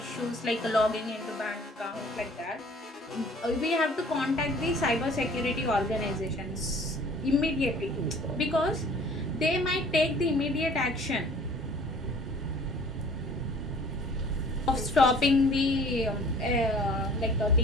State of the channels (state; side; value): normal; both; correlation 0.51